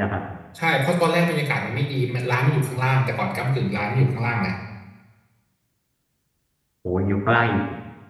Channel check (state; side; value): identical; both; correlation 1.00